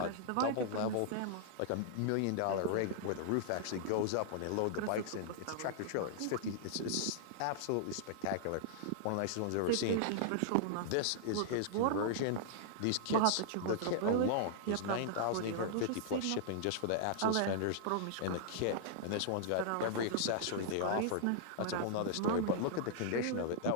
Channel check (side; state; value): both; different; correlation -0.01